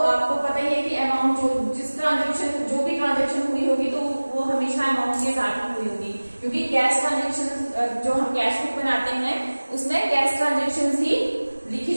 आपको पता ही है कि अमाउंट जो भी ट्रांजेक्शन हुई होगी तो वो हमेशा अमाउंट के साथ हुई होगी, क्योंकि कैश ट्रांजेक्शन जो हम कैश बुक बनाते हैं उसमें कैश ट्रांजेक्शन ही लिखी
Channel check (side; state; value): both; inverted; correlation -1.00